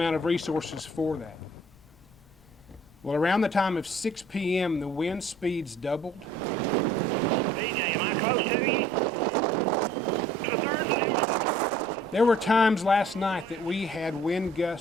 of resources for that. Well, around the time of 6 p.m., the wind speeds doubled. DJ, am I close to you? There were times last night that we had wind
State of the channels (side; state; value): left; noise; rumble, 26 dB below the sound